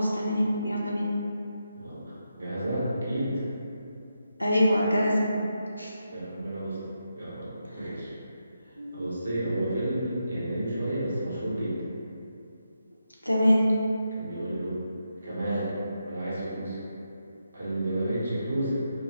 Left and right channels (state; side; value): inverted; both; correlation -0.85